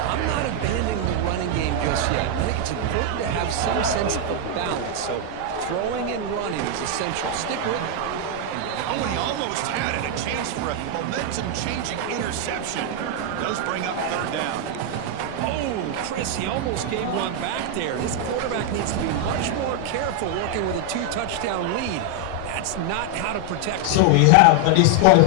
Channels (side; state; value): both; different; correlation 0.00